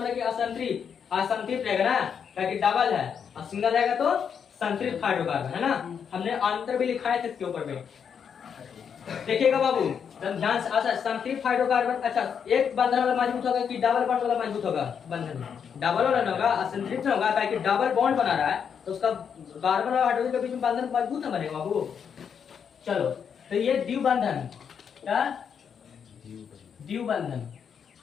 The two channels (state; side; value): quieter; right; 7.3 dB